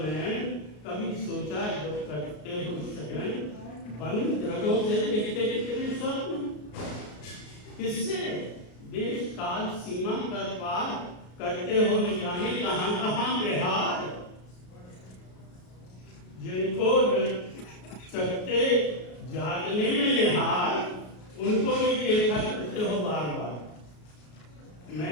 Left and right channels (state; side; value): late; right; 33 ms